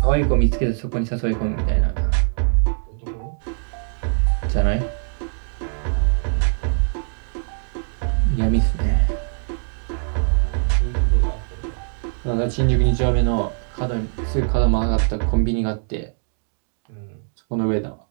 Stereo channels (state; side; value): silent; left; digital silence